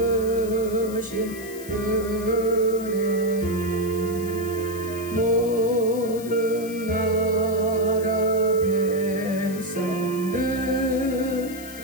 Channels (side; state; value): left; noise; hiss, 16 dB below the sound